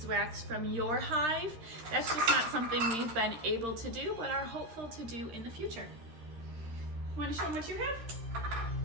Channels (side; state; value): left; late; 13 ms